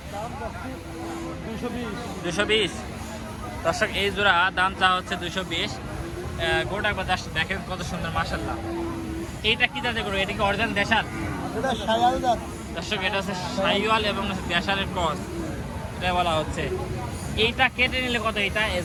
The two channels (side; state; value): both; identical; correlation 1.00